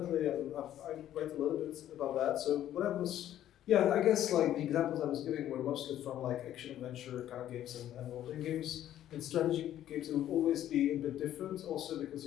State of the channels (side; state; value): right; quieter; 11.9 dB